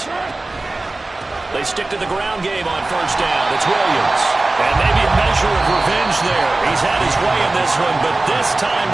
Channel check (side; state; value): left; quieter; 3.0 dB